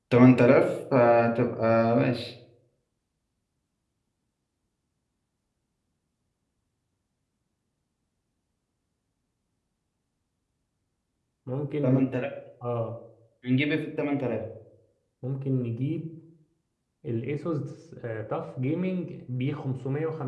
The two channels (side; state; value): both; identical; correlation 1.00